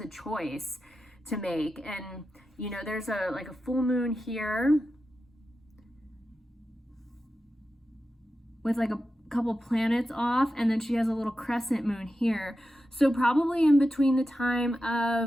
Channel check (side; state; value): both; normal; correlation 0.91